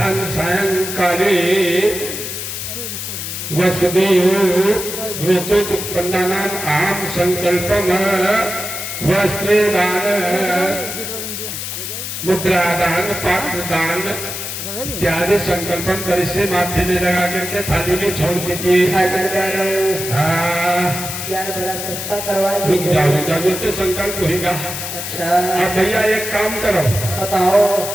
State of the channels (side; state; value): left; noise; hiss, 6 dB below the sound